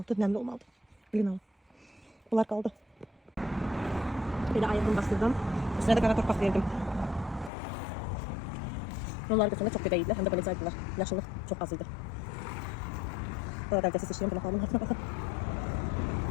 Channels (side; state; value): right; drops out; at 7.5 s